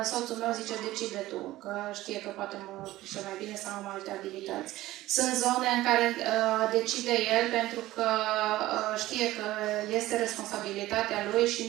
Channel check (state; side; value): quieter; left; 16.5 dB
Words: soțul meu zice decide tu, că știe că poate mă pricepe mai bine sau am alte abilități. Sunt zone în care decide el pentru că știe că este responsabilitatea lui și